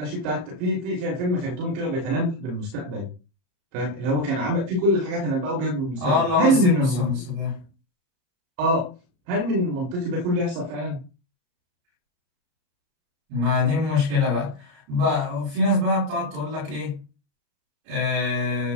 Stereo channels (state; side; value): late; left; 33 ms